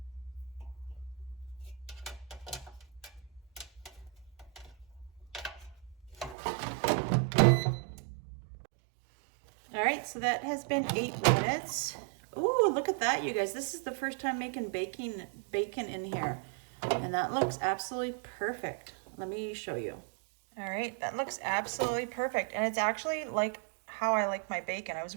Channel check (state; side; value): drops out; left; at 6.4 s